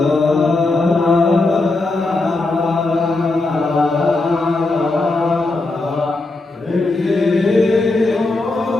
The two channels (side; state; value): right; quieter; 3.1 dB